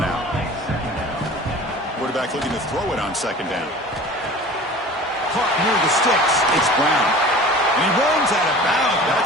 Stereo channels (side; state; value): both; normal; correlation 0.41